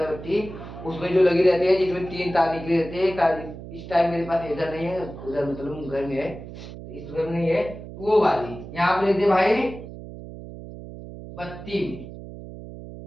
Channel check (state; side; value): noise; right; hum, 13 dB below the sound